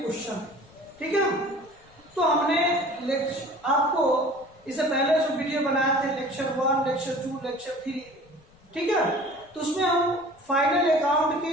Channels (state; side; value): noise; left; rumble, 29 dB below the sound